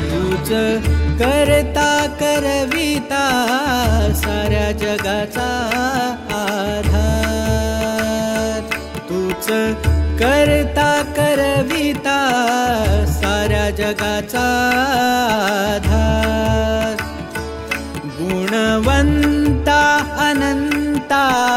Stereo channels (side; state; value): both; identical; correlation 1.00